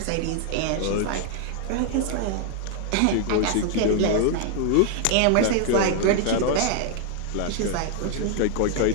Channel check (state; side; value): different; both; correlation 0.00